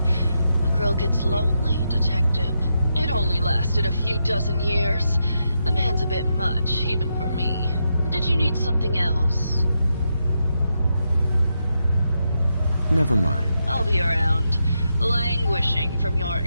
A girl gets lonely, Detective. It only lasted a few dozen years. The man's a bit much, even for me. Did you need something else? Never mind. I'll be around, languishing from your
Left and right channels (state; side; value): inverted; both; correlation -0.84